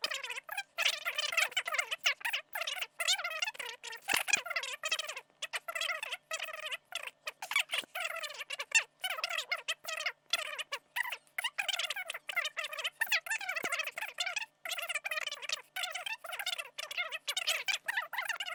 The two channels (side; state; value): both; identical; correlation 1.00